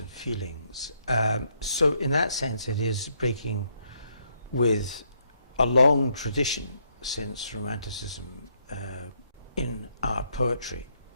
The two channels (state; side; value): inverted; both; correlation -0.74